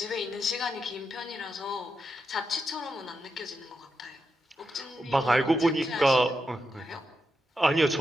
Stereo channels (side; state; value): both; normal; correlation 0.86